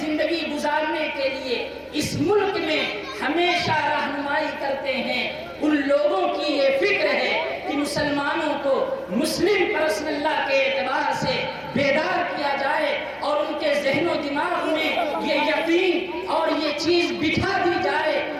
گزارنے کے لیے اس ملک میں ہمیشہ رہنمائی کرتے ہیں، ان لوگوں کی یہ فکر ہے کہ مسلمانوں کو مسلم پرسن اللہ کے اعتبار سے بیدار کیا جائے اور ان کے ذہن و دماغ میں یہ یقین اور یہ چیز بٹھا دی جائے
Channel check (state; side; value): identical; both; correlation 1.00